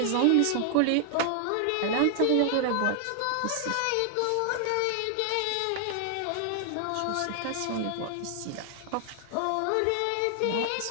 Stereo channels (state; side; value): different; both; correlation 0.00